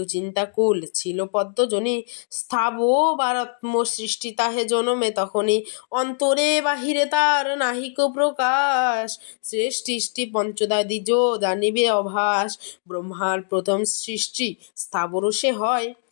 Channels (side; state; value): right; silent; digital silence